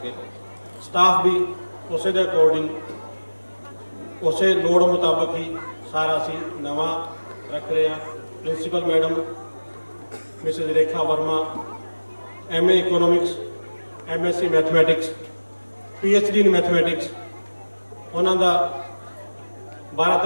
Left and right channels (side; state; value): both; inverted; correlation -1.00